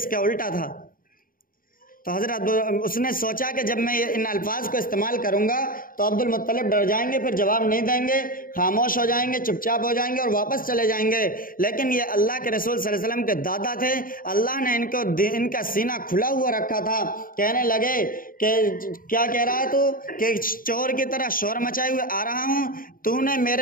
کا الٹا تھا۔ تو حضرت اس نے سوچا کہ جب میں ان الفاظ کو استعمال کروں گا تو عبد المطلب ڈر جائیں گے، پھر جواب نہیں دیں گے، خاموش ہو جائیں گے، چپ چاپ ہو جائیں گے اور واپس چلے جائیں گے۔ لیکن یہ اللہ کے رسول صلی اللہ علیہ وسلم کے دادا تھے، اللہ نے ان کا سینہ کھلا ہوا رکھا تھا۔ کہنے لگے کہ کیا کہہ رہا ہے تو؟ کہ چور کی طرح شور مچائے ہوئے آ رہا ہوں، تو نے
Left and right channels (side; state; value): right; late; 0.41 ms